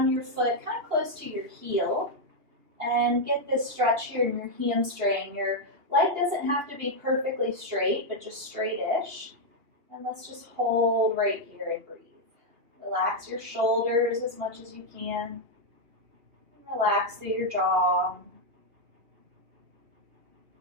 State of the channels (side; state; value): left; late; 3.0 ms